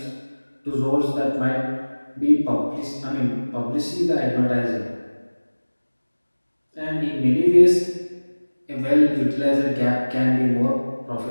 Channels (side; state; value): both; inverted; correlation -1.00